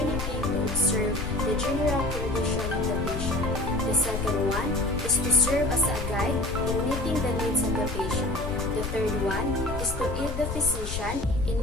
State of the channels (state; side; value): noise; left; rumble, 5 dB below the sound